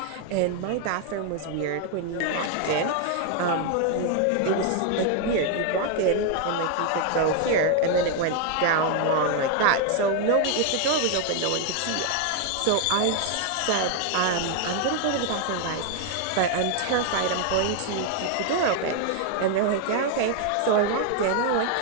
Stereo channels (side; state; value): both; different; correlation 0.00